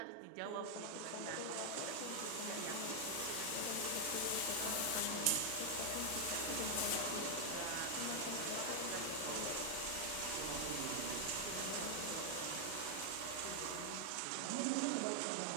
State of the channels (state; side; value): different; both; correlation 0.00